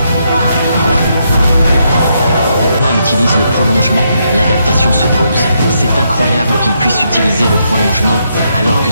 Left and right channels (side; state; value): both; inverted; correlation -0.78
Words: On utilise le prolongement, l'adaptation se pose. C'est incroyable qu'il puisse utiliser le prolongement alors que